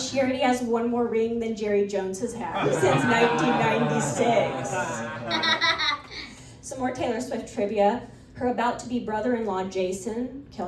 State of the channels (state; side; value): identical; both; correlation 1.00